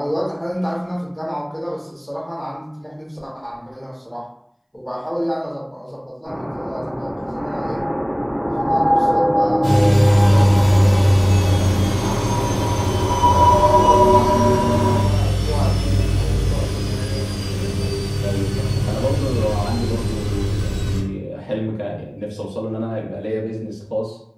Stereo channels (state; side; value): identical; both; correlation 1.00